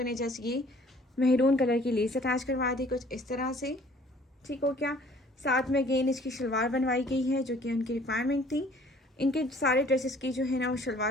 ने जस्ट ये मेहरून कलर की लेस अटैच करवा दी कुछ इस तरह से, ठीक हो क्या। साथ में अगेन इसकी शलवार बनवाई गई है जो कि उनकी रिक्वायरमेंट थी। इनके सारे ड्रेसेस की जो है ना वो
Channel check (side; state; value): both; normal; correlation 0.55